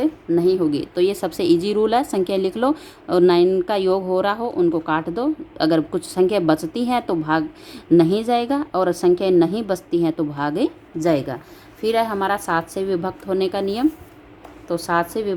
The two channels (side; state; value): both; identical; correlation 1.00